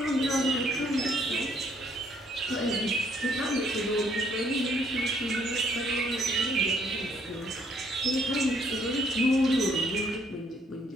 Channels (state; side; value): normal; both; correlation 0.67